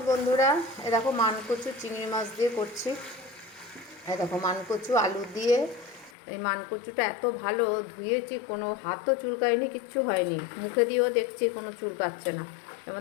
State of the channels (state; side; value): drops out; right; at 6.1 s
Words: বন্ধুরা। এ দেখো মানকচু চিংড়ি মাছ দিয়ে করছি। এ দেখো মানকচু আলু দিয়ে। এই মানকচুটা এত ভালো ধুয়েছি, কোনো হাতও চুলকায়নি, কিচ্ছু হয়নি। মুখে দিয়েও দেখছি কোনো চুলকাচ্ছে না। এর